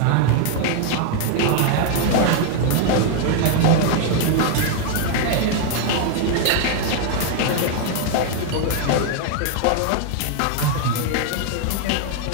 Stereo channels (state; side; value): different; both; correlation 0.00